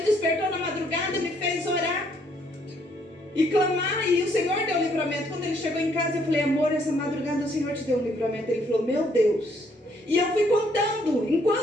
despertou na madrugada, me fez orar e clamar, e o Senhor deu o livramento. Quando ele chegou em casa, eu falei, amor, essa madrugada o Senhor te deu um livramento. Ele falou, meu Deus. E eu fui contando.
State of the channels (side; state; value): both; normal; correlation 0.68